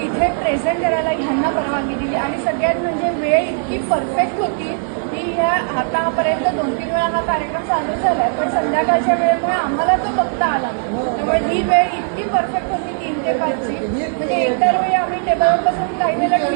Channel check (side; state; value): left; silent; 63 dB below the other